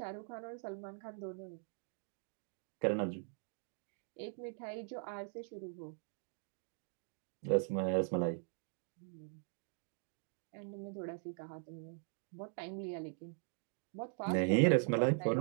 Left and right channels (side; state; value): left; silent; 50 dB below the other